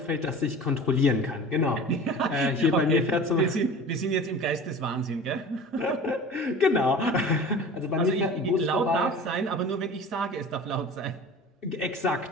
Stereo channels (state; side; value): normal; both; correlation 0.38